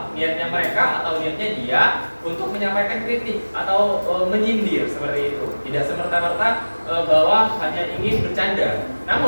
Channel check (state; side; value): inverted; both; correlation -1.00